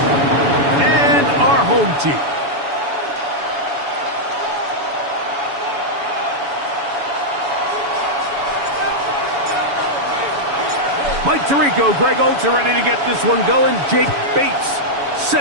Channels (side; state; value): left; late; 7.0 ms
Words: and our home team. Mike Tirico, Greg Oates are ready to get this one going. Jake Bates